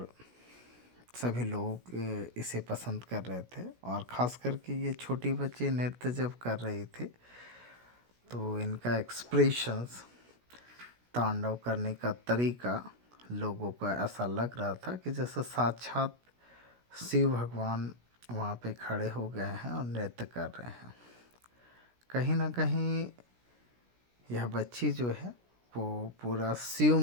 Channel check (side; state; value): left; late; 16 ms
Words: सभी लोग इसे पसंद कर रहे थे। और ख़ास करके ये छोटी बच्ची नृत्य जब कर रही थी तो इनका एक्सप्रेशंस, तांडव करने का तरीका लोगों को ऐसा लग रहा था कि जैसे साक्षात शिव भगवान वहाँ पे खड़े हो गए हैं और नृत्य कर रहे हैं। कहीं ना कहीं यह बच्ची जो है वो पूरा